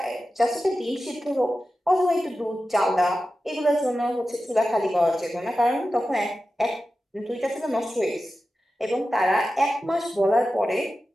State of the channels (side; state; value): both; normal; correlation 0.93